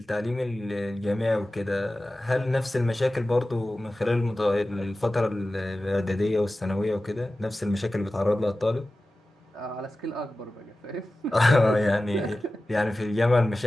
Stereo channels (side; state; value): both; normal; correlation 0.95